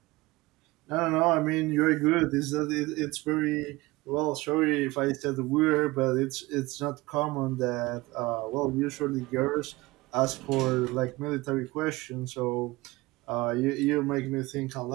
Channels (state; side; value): quieter; left; 21.1 dB